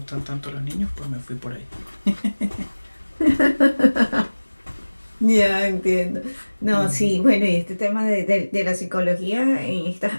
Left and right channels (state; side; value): inverted; both; correlation -1.00